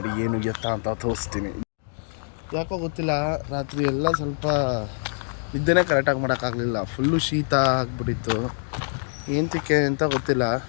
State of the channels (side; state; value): right; silent; digital silence